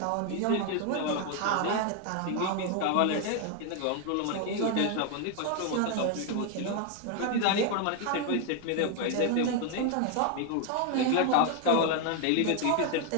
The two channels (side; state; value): both; different; correlation 0.00